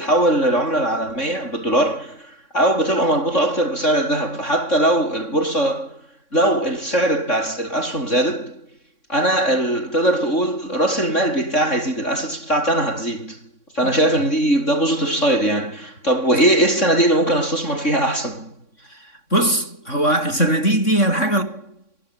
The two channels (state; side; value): late; right; 3.6 ms